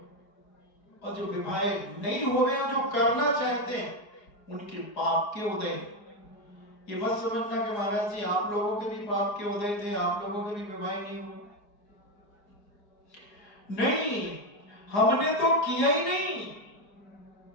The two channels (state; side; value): late; right; 4.9 ms